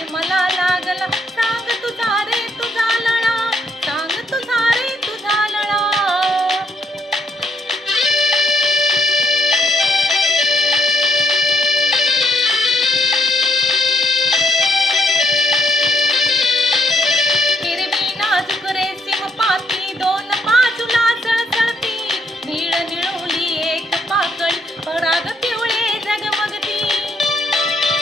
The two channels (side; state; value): both; normal; correlation 0.72